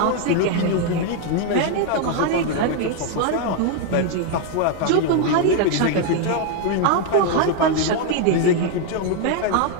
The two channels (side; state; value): both; different; correlation 0.01